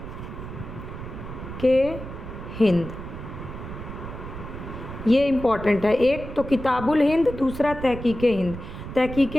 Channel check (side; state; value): right; noise; rumble, 10 dB below the sound